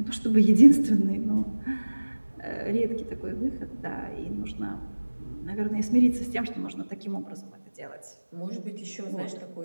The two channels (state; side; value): inverted; both; correlation -1.00